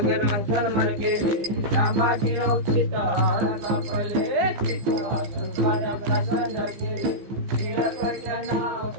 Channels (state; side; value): late; left; 15 ms